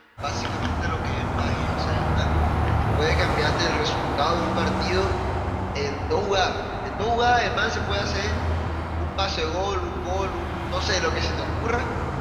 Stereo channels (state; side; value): identical; both; correlation 1.00